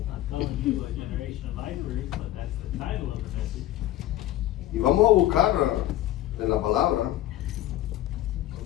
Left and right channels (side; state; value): right; quieter; 14.0 dB